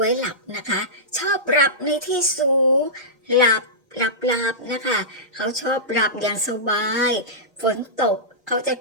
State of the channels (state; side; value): normal; both; correlation -0.16